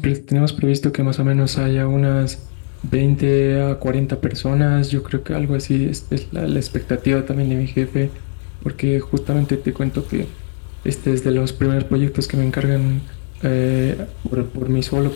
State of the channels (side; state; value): right; silent; 61 dB below the other